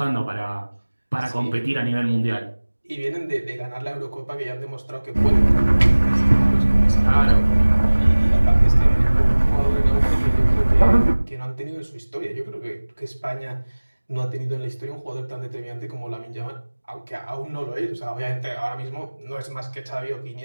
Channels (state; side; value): inverted; both; correlation -1.00